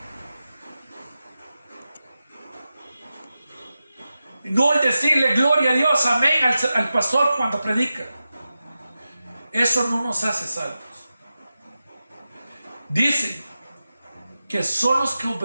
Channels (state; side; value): inverted; both; correlation -0.92